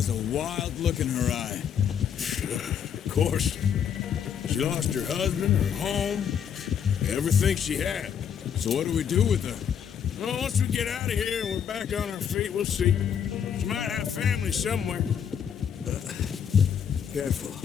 a wild look in her eye. Of course. She lost her husband, her home, everything she had. So what do we do with her? Well, once we get out of here and we're back on our feet, we'll see. She might have family somewhere. Careful.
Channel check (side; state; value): right; quieter; 8.0 dB